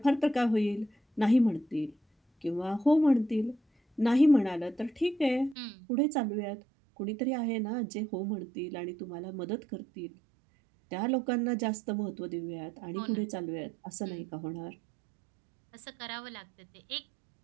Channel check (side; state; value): left; drops out; at 5.6 s